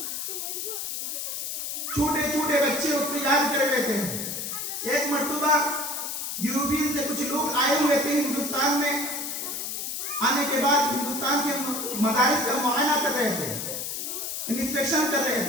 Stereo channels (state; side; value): noise; left; hiss, 4 dB below the sound